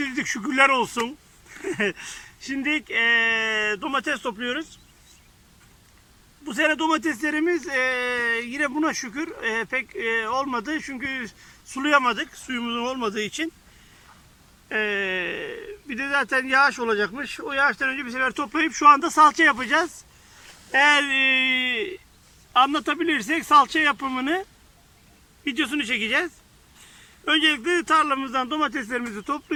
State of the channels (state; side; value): identical; both; correlation 1.00